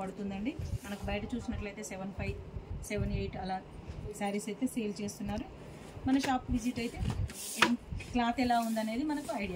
పడుతుందండి. మనకు బయట చూసినట్లయితే 7,500, 7,800 అలా శారీస్ అయితే సేల్ చేస్తున్నారు. మన షాప్ విజిట్ అయితే క్లాత్ ఎలా ఉందనేది మనకు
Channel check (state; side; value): identical; both; correlation 1.00